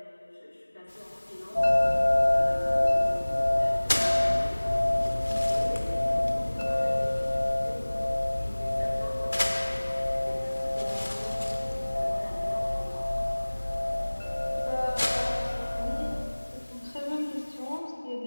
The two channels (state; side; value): inverted; both; correlation -1.00